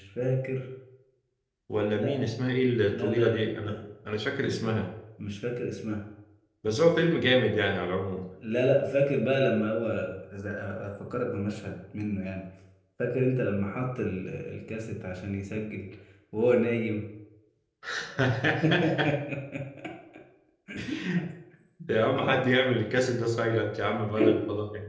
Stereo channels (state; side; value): identical; both; correlation 1.00